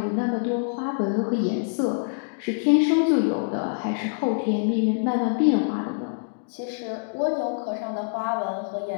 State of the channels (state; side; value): silent; right; digital silence